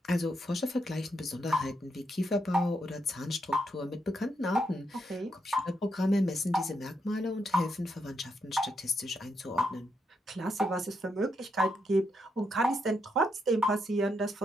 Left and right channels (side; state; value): both; normal; correlation 0.80